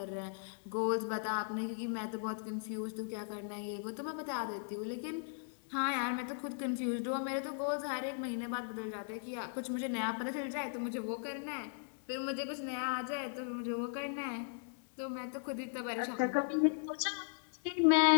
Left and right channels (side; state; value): right; silent; digital silence